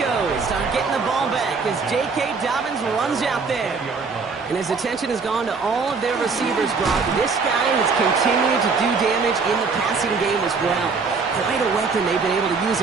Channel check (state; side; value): quieter; left; 4.7 dB